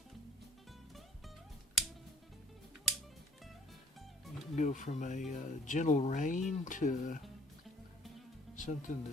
You can go from a gentle rain to something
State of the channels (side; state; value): both; normal; correlation 0.57